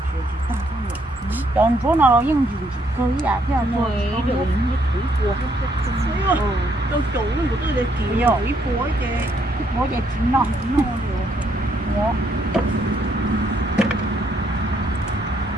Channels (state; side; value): normal; both; correlation 0.71